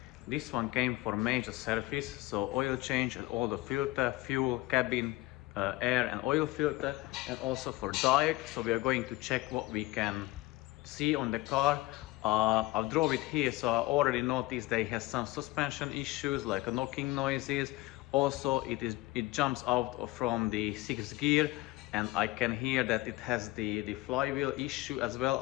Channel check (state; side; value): quieter; right; 19.6 dB